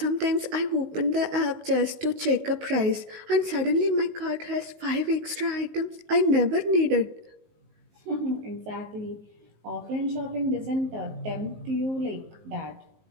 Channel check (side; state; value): left; late; 19 ms